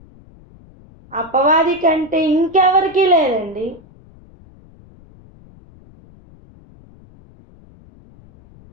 అపవాది కంటే ఇంకెవరికి లేదండి.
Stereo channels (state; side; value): noise; left; rumble, 25 dB below the sound